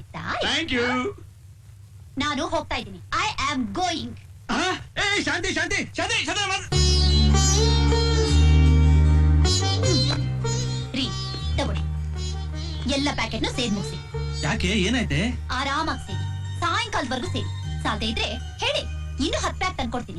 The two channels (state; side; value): identical; both; correlation 1.00